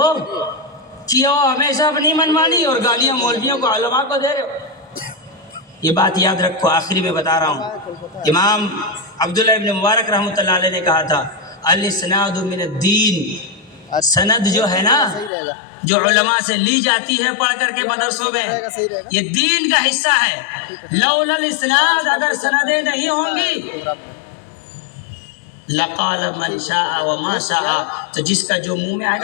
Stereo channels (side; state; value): right; drops out; at 15.3 s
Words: کیا ہمیشہ اپنی منمانی اور گالیاں مولویوں کو علماء کو دے رہے ہو. یہ بات یاد رکھو, آخری میں بتا رہا ہوں. امام عبداللہ ابن مبارک رحمۃ اللہ علیہ نے کہا تھا الاسناد من الدین. سند جو ہے نا, جو علماء سے لی جاتی ہے پڑھ کر کے مدرسوں میں, یہ دین کا حصہ ہے. لولا الاسناد, اگر سندیں نہیں ہوں گی, لقال من شاء وما شاء, تو جس کا جو منہ میں آئے